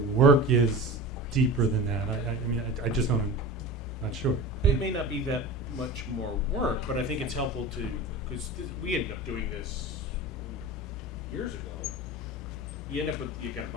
work is deeper than that. I mean, I just don't, I'm not sure. It may not be that much more work, but I think it's helpful to, because we ended up doing this years ago. You end up with, you got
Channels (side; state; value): both; normal; correlation 0.32